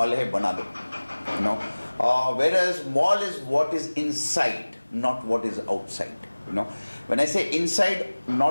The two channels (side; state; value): both; inverted; correlation -1.00